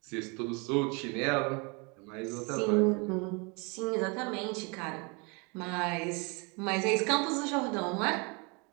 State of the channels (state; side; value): quieter; left; 31.0 dB